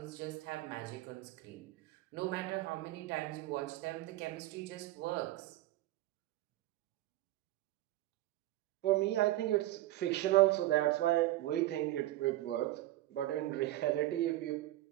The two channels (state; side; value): quieter; left; 16.3 dB